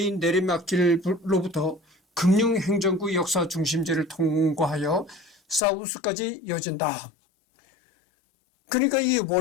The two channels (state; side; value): drops out; right; at 5.6 s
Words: 내리막길로부터 금융행정구 역사 중심지를 통과하여 사우스까지 이어진다. 그러니까 이